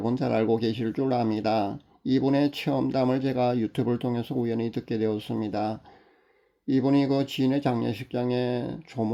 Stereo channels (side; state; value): both; identical; correlation 1.00